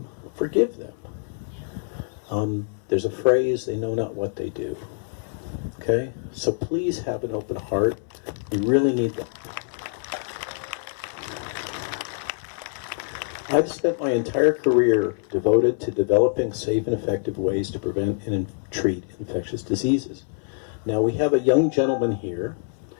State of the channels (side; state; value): right; silent; 59 dB below the other